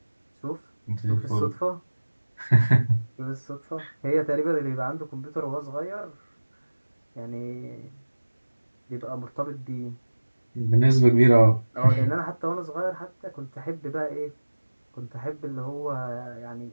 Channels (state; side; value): inverted; both; correlation -1.00